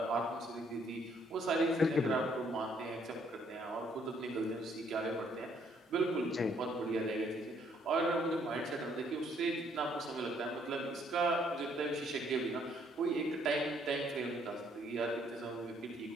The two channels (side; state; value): both; normal; correlation 0.67